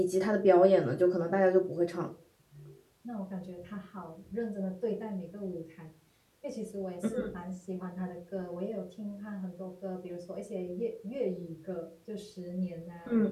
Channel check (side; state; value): both; identical; correlation 1.00